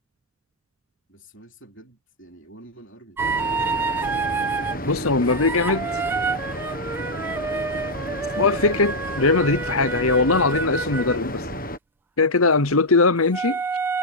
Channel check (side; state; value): both; normal; correlation -0.02